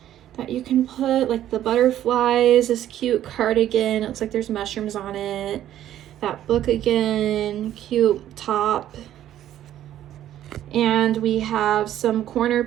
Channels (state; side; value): quieter; left; 12.0 dB